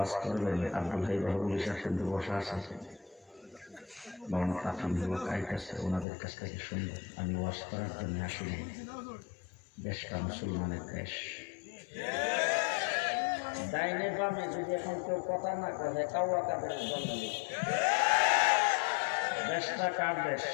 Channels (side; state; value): right; drops out; at 6.1 s